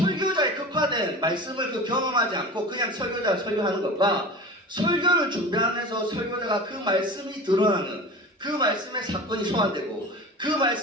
극화된 말씀을 경험하지 않고 그냥 설교자가 설교하는 것과 설교를 준비하면서 설교자가 그 말씀이 드러나는 그 말씀의 사건이 소환되고 그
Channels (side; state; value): both; normal; correlation 0.34